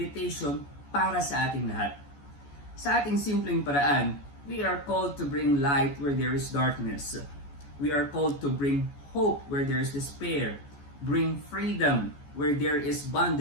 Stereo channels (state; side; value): late; right; 14 ms